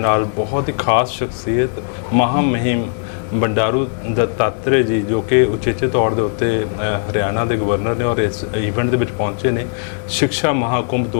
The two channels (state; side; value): silent; right; digital silence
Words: ਬਹੁਤ ਹੀ ਖਾਸ ਸ਼ਖਸੀਅਤ ਮਹਾਮਹਿਮ ਬੰਡਾਰੂ ਦੱਤਾਤਰੇ ਜੀ ਜੋ ਕਿ ਉਚੇਚੇ ਤੌਰ ਦੇ ਉੱਤੇ ਹਰਿਆਣਾ ਦੇ ਗਵਰਨਰ ਨੇ ਔਰ ਇਸ ਇਵੈਂਟ ਦੇ ਵਿੱਚ ਪਹੁੰਚੇ ਨੇ ਸਿੱਖਿਆ ਮਹਾਕੁੰਭ